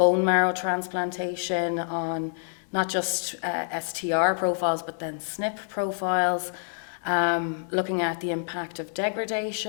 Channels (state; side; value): silent; right; digital silence